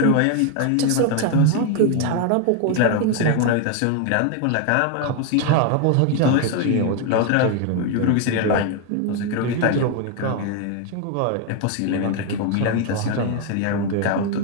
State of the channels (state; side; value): different; both; correlation 0.01